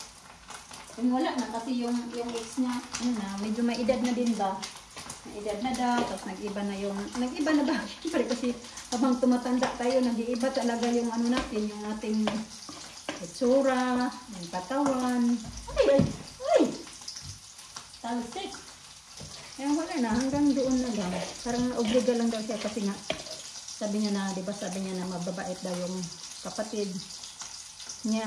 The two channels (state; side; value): identical; both; correlation 1.00